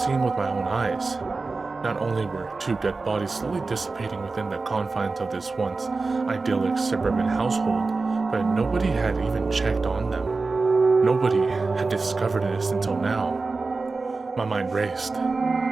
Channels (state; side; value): quieter; left; 3.9 dB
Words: seeing with my own eyes. Not only were two dead bodies slowly dissipating within the confines of this once idyllic suburban household, but nobody had even checked on them. Nobody had discovered this until now. My mind raced.